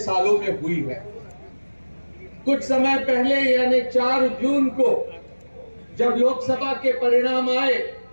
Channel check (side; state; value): both; inverted; correlation -1.00